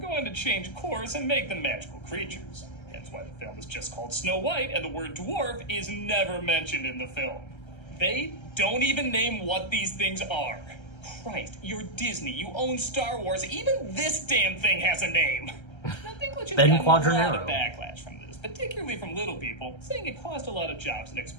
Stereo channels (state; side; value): late; right; 1.3 ms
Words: to change course and make them magical creatures. That's why the film is just called Snow White, and the word dwarf is never mentioned in the film. They don't even name what these things are. Christ, you're Disney, you own Star Wars, even this damn thing has a name! Now, Dinklage has Ben gotten a lot Quadranero. of backlash from this, particularly from little people, saying it cost a lot of jobs and